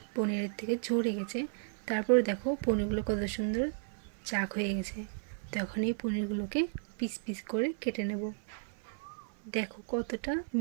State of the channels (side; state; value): left; silent; 55 dB below the other